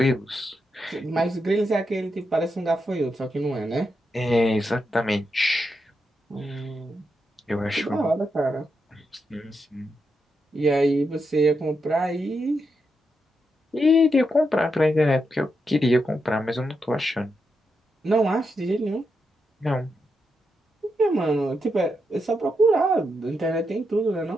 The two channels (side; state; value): both; normal; correlation 0.84